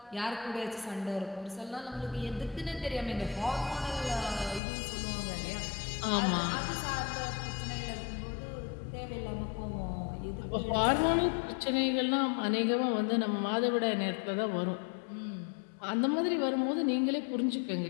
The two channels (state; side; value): drops out; right; at 4.6 s